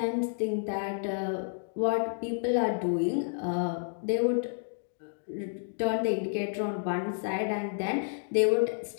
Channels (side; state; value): right; silent; digital silence